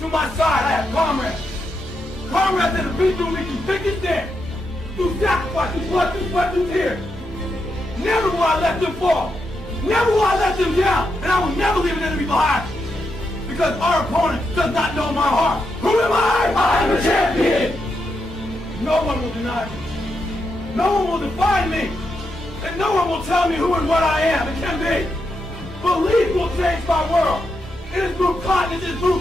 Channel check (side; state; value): both; normal; correlation 0.83